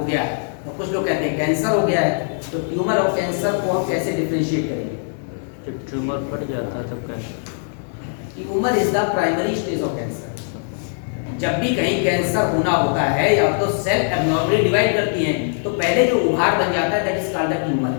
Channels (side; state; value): right; silent; 65 dB below the other